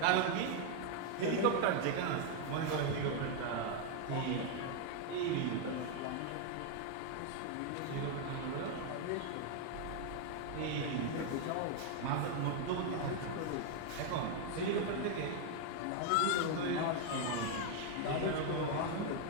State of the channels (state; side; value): different; both; correlation 0.01